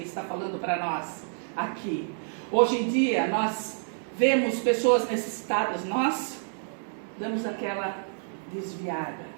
ele está falando para nós aqui. Hoje em dia, nós vemos pessoas necessitadas, nós damos aquela desviada.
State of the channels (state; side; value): silent; left; 59 dB below the other